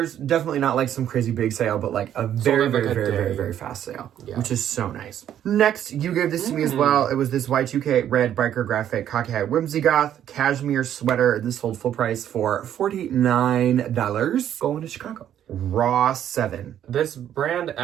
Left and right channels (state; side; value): quieter; left; 10.5 dB